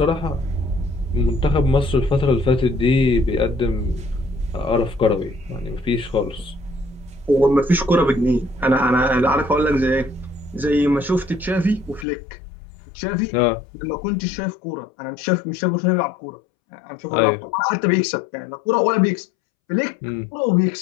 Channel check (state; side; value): drops out; right; at 12.1 s